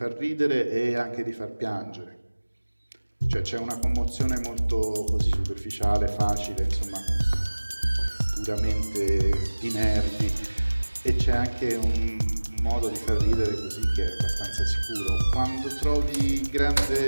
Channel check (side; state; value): both; inverted; correlation -1.00